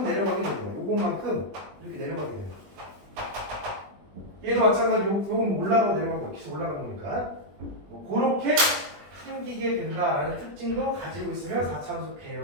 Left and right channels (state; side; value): late; left; 20 ms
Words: 내려가게 되는 거야. 요것만큼 이렇게 내려가게 되는 거야. 얘도 마찬가지로 요건 올라가고 내려가고 막 계속 올라가는 거니까 뭐 그렇게 생기게 된다라는 특징도 가지고 있으면 4차원수